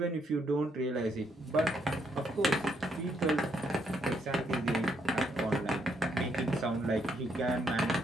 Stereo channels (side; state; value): both; normal; correlation 0.75